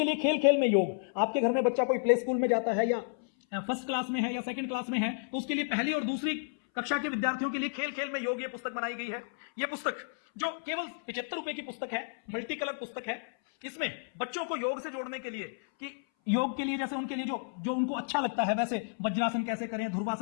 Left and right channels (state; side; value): silent; right; 57 dB below the other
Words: लिए खेल खेल में योग। आपके घर में बच्चा कोई प्ले स्कूल में जाता है या फर्स्ट क्लास में है या सेकंड क्लास में है, तो उसके लिए पहली और दूसरी कक्षा के विद्यार्थियों के लिए खेल खेल में योग ये पुस्तक बनाई गई है। ये पुस्तक जो केवल 75 रुपए की पुस्तक है, मल्टी कलर पुस्तक है। इसमें बच्चों को योग से जोड़ने के लिए कि योग के लिए जैसे उनके लिए जो उनको अच्छा लगता है, वैसे वज्रासन कैसे करें,